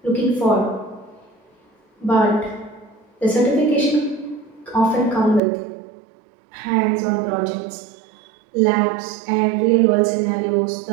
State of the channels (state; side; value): drops out; left; at 5.4 s